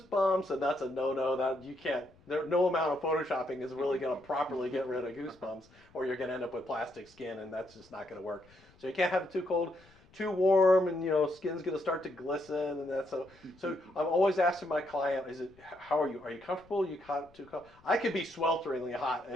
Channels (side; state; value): left; noise; rumble, 28 dB below the sound